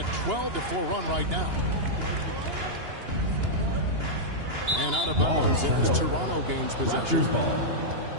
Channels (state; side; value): late; left; 2.8 ms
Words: 12-4 run right now. And out of bounds as Toronto gains possession.